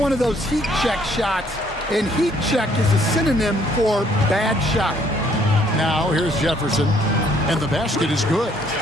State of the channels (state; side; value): normal; both; correlation 0.65